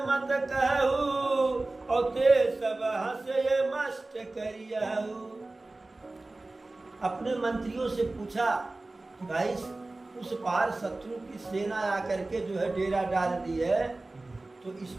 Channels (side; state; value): left; quieter; 3.0 dB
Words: मत कहू और ते सब हंसे मस्त करियहु। अपने मंत्रियों से पूछा कि भाई उस पार शत्रु की सेना आकर के जो है डेरा डाल दी है, तो इस